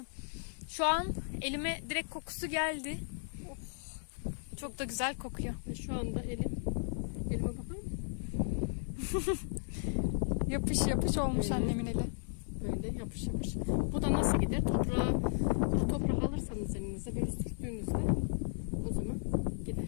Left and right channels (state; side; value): silent; right; 54 dB below the other